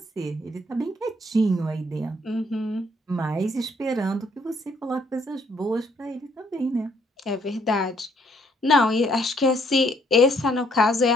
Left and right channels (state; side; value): normal; both; correlation 0.67